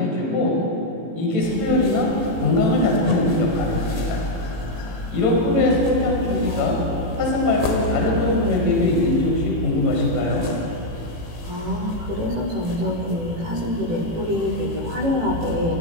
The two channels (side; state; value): left; late; 18 ms